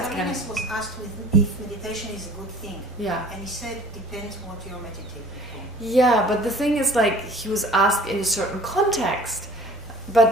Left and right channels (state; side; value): noise; left; rumble, 21 dB below the sound